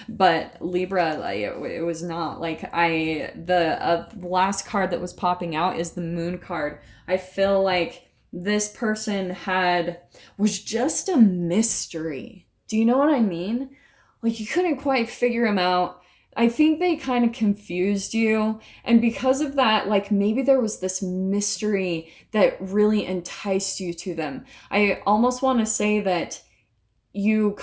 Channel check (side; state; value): both; identical; correlation 1.00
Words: but Libra, like, it was not. Like the last card that was popping out is the Moon card. I feel like this person was just a mystery. Do you know what I mean? Like you couldn't quite figure him out. I think they kind of confused you. And because of that, like maybe there was this mystery that really enticed you to them. I almost want to say that you